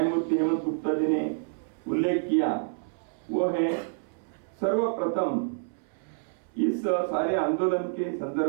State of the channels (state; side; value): silent; left; 59 dB below the other